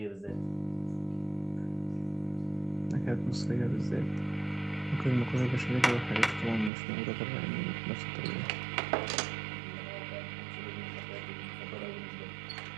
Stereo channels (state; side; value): drops out; left; at 6.7 s